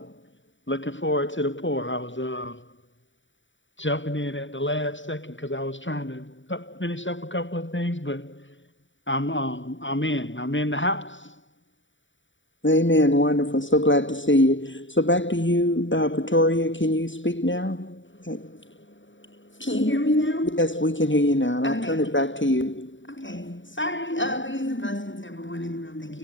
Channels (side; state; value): right; late; 0.55 ms